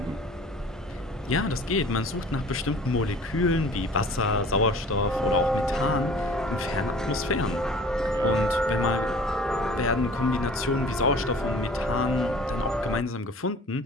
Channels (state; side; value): normal; both; correlation 0.47